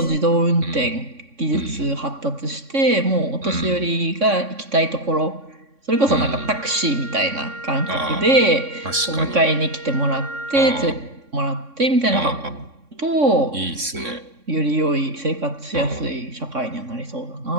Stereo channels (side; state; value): left; late; 3.6 ms